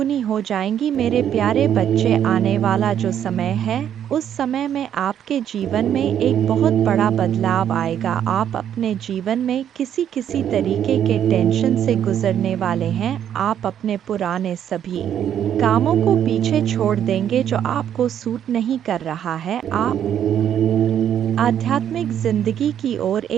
हो जाएंगी। मेरे प्यारे बच्चे, आने वाला जो समय है, उस समय में आपके जीवन में एक बहुत बड़ा बदलाव आएगा। आप अपने जीवन में किसी तरीके के टेंशन से गुजरने वाले हैं। आप अपने पुराने सभी कामों को पीछे छोड़ देंगे जो आपको सूट नहीं कर रहा है। आप आध्यात्मिक जिंदगी की ओर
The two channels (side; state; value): left; quieter; 9.7 dB